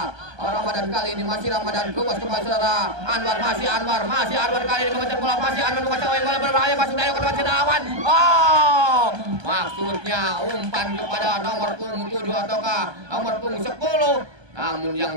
Ramadan kali ini masih Ramadan lupas kembali saudara Anwar masih Anwar kali ini memecah bola masih Anwar memecah bola berbahaya masuk dari ke depan awan. Maksudnya umpan kepada nomor punggung 7 ataukah nomor punggung 10. Namun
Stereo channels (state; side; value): late; left; 1.2 ms